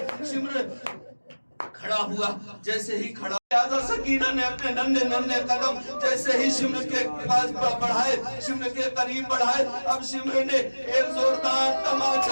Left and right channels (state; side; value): inverted; both; correlation -1.00